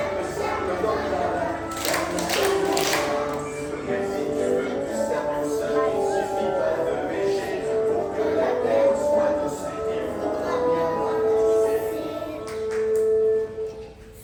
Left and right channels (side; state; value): both; identical; correlation 1.00